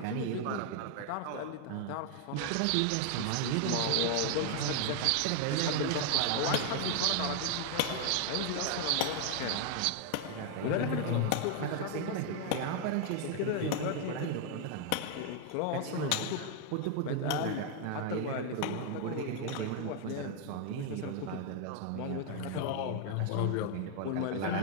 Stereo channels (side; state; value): both; different; correlation 0.00